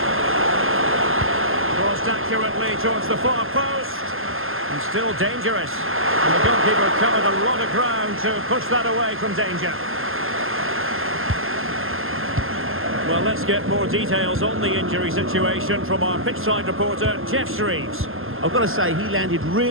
Crossed accurately towards the far post. And still dangerous. And the goalkeeper covered a lot of ground to push that away from danger. Well, let's get more details on the injury situation from our pitchside reporter, Jeff Shreves. I've got to say, he landed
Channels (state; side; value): late; left; 0.60 ms